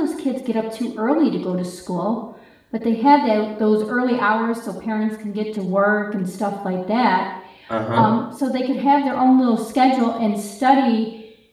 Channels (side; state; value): both; identical; correlation 1.00